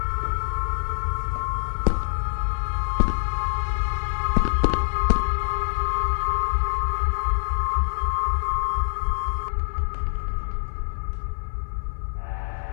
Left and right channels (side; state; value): right; silent; digital silence